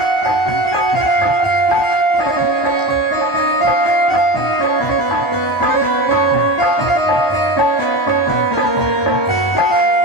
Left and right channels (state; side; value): late; right; 1.2 ms